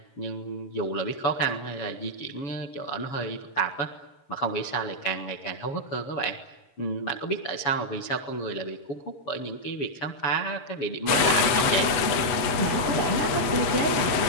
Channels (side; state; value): right; late; 8.0 ms